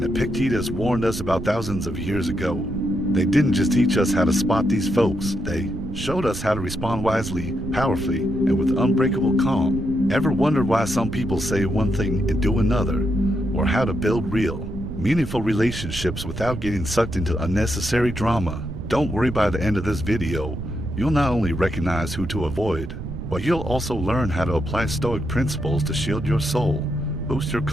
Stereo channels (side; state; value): right; noise; rumble, 8 dB below the sound